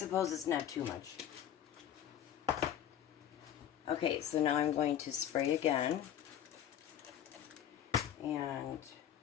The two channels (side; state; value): right; quieter; 10.0 dB